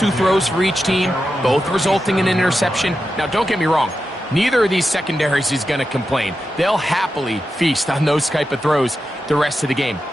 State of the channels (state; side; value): normal; both; correlation 0.89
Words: throws for each team, both resulting in an interception. Now, don't get me wrong. Neither of these secondaries is going to complain. They'll happily feast on those type of throws the rest of the game.